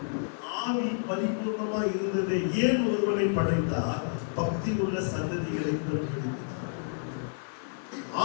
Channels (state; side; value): silent; right; 57 dB below the other